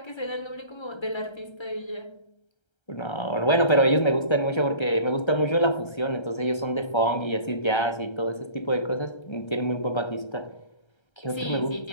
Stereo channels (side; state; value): right; late; 1.3 ms